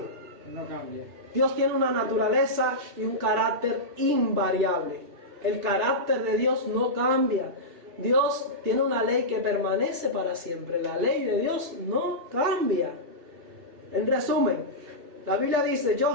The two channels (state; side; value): late; left; 2.7 ms